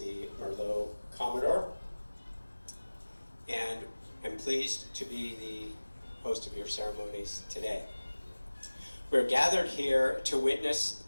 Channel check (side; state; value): both; inverted; correlation -1.00